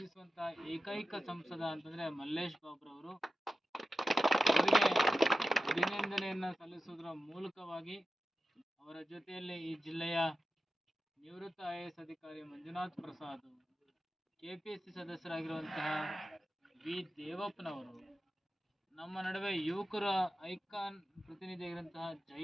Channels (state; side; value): normal; both; correlation 0.92